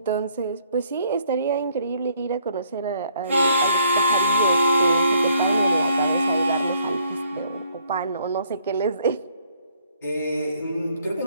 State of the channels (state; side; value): inverted; both; correlation -0.65